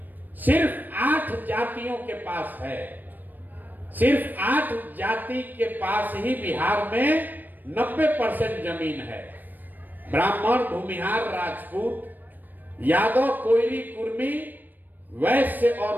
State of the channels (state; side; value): late; left; 0.088 ms